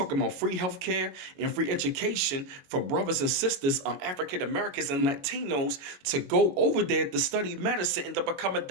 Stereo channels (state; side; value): late; left; 22 ms